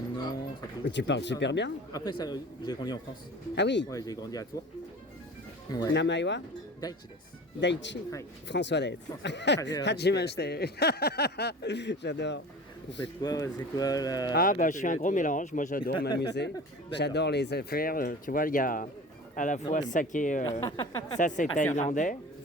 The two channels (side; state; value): both; normal; correlation 0.38